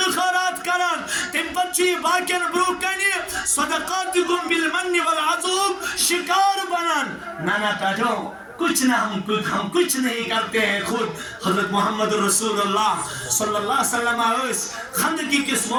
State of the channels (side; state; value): both; identical; correlation 1.00